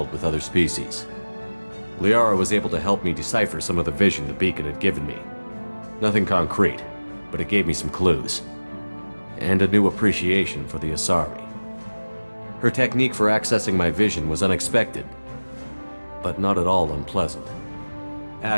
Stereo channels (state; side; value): inverted; both; correlation -1.00